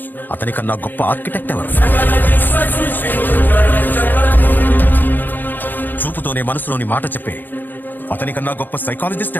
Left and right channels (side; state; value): right; late; 0.089 ms